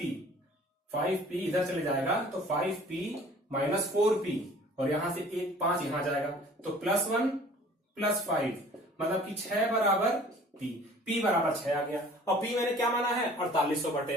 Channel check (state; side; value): normal; both; correlation 0.50